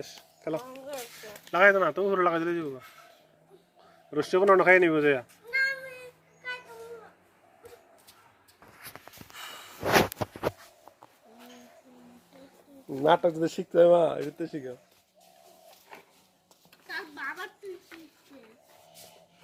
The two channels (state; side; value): identical; both; correlation 1.00